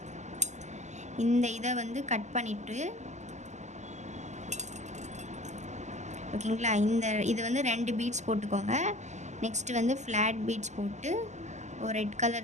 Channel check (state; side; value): late; left; 0.34 ms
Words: இந்த இதை வந்து கட் பண்ணிவிட்டு ஓகேங்களா, இது வந்து 2 பீட்ஸ் போட்டுக்கோங்க. நெக்ஸ்ட்டு வந்து ஃப்ளாட் பீட்ஸ் போட்டு ஒரு ரெட்